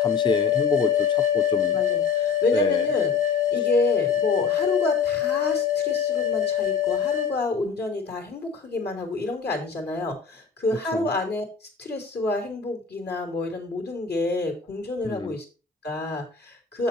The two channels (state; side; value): quieter; right; 5.7 dB